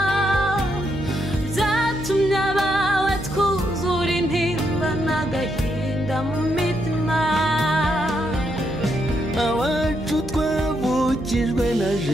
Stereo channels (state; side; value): noise; right; hum, 10 dB below the sound